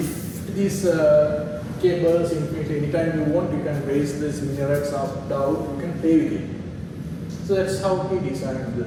these cables infinitely. Anytime you want, you can raise this minarets up, down, you can play with it. So that's how he designed the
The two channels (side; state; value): both; identical; correlation 1.00